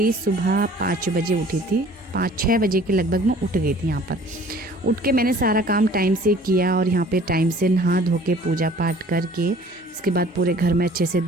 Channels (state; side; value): normal; both; correlation 0.51